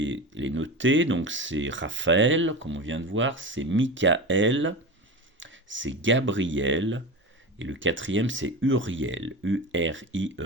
les noter. Donc c'est Raphaël, comme on vient de voir, c'est Michael, c'est Gabriel, et le 4e, c'est Uriel,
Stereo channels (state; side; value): normal; both; correlation 0.27